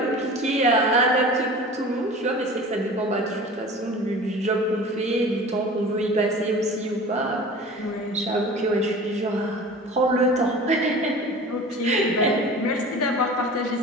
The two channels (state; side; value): normal; both; correlation 0.39